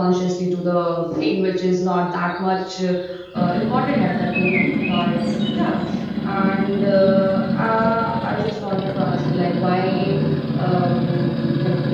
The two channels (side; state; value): both; identical; correlation 1.00